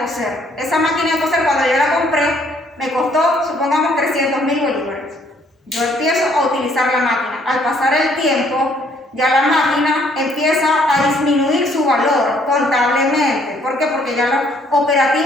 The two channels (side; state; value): both; normal; correlation 0.65